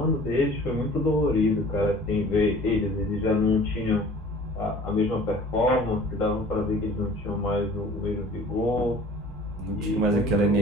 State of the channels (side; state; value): both; normal; correlation 0.47